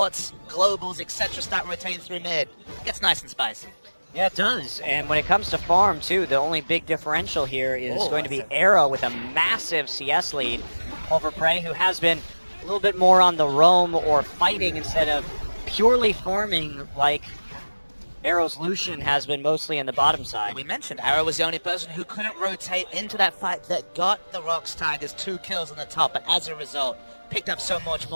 globals, etc. start rotating through mid, it gets nice and spicy. Yeah, it does. And when it comes to farm, too, the only big differential here is going to be Arrow with a massive CS lead over Prey, who has been a little bit more on the roam or fighting instead of purely farming like Arrow's Lucian has been mostly in the bottom side. We mentioned Arrow was the only person who couldn't rotate into that fight that got the ROX Tigers 2 kills on the top, but as a result, picked up so much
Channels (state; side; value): inverted; both; correlation -1.00